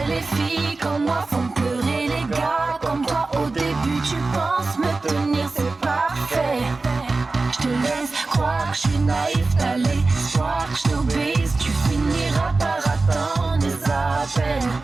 les filles comme moi font pleurer les gars comme toi. Au début, tu penses me tenir, c'est parfait. Je te laisse croire que je suis naïf, t'as l'espoir que je t'obéisse. Tu finiras par attendre des appels.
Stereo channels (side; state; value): left; quieter; 3.6 dB